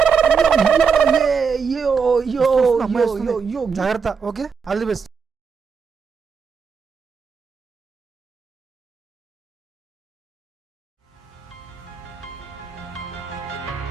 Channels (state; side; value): quieter; left; 5.8 dB